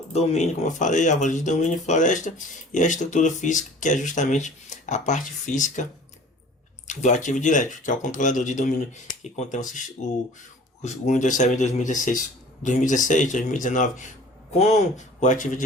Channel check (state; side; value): normal; both; correlation 0.46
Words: domínio, como eu falei, árvore de domínio, floresta, e a estrutura física, que é justamente a parte física do Active Directory, que é o controlador de domínio que contém o Windows Server 2016, 2019 com o Active